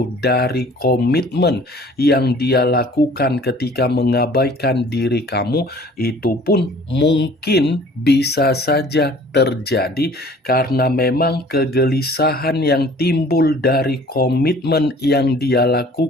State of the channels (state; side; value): normal; both; correlation 0.51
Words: dari komitmen yang dia lakukan ketika mengabaikan diri kamu, itu pun mungkin bisa saja terjadi karena memang kegelisahan yang timbul dari komitmen yang dia